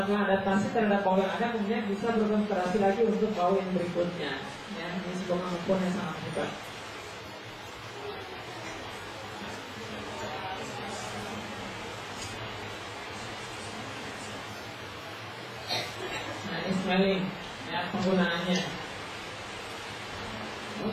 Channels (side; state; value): both; identical; correlation 1.00